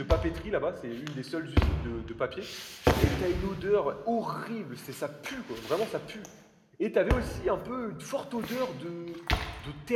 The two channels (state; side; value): identical; both; correlation 1.00